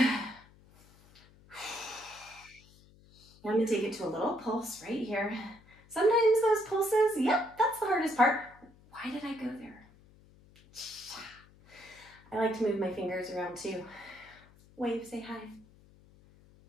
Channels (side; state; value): left; noise; hum, 26 dB below the sound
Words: going to take it to a little pulse right here. Sometimes those pulses, yep, that's the hardest part. Why did I go there? I like to move my fingers around too. Wave, say hi.